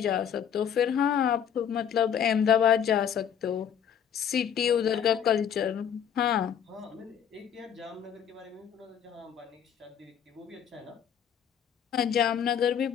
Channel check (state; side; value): quieter; right; 8.4 dB